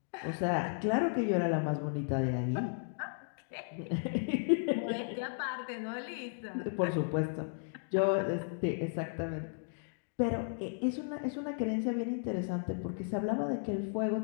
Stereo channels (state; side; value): silent; right; digital silence